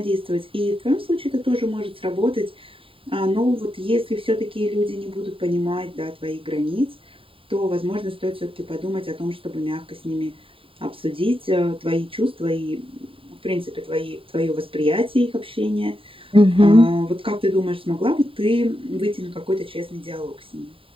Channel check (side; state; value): left; late; 0.26 ms